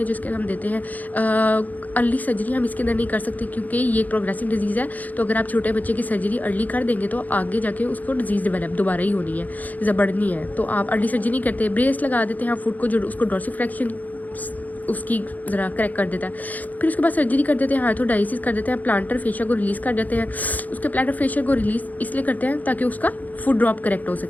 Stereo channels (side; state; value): right; late; 0.080 ms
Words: जिसके हम देते हैं। अर्ली सर्जरी हम इसके अंदर नहीं कर सकते क्योंकि ये एक प्रोग्रेसिव डिजीज़ है, तो अगर आप छोटे बच्चे की सर्जरी अर्ली कर देंगे तो आगे जाके उसको डिजीज़ डेवलप दोबारा ही होनी है या बढ़नी है, तो आप अर्ली सर्जरी नहीं करते, ब्रेस लगा देते हैं फुट को जो उसको डॉर्सिफ्लेक्शन उसकी ज़रा करेक्ट कर देता है। फिर उसके बाद सर्जरी कर देते हैं, आर्थोडाइसिस कर देते हैं, प्लांटर फेशिया को रिलीज़ कर देते हैं। उसके प्लांटर फेशिया को रिलीज़ इसलिए करते हैं ताकि उसका फुट ड्रॉप करेक्ट हो